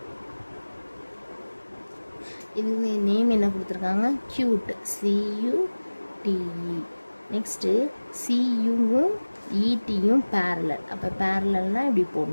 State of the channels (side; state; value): both; inverted; correlation -1.00